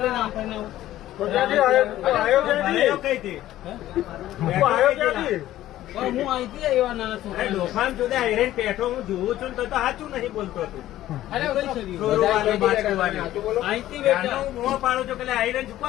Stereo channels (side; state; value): right; quieter; 14.0 dB